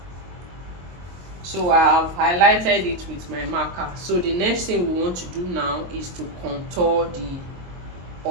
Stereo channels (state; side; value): late; left; 22 ms